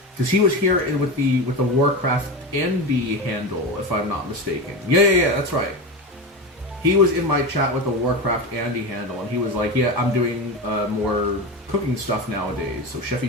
Because he was here with the Warcraft Andy handle, if I'm not mistaken. Yeah, that's right. he was in my chat with the Warcraft Andy handle, and he was like, yeah, I'm doing more cooking stuff nowadays, so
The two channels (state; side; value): normal; both; correlation 0.21